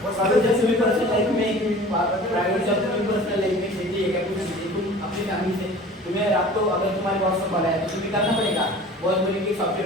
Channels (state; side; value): normal; both; correlation 0.43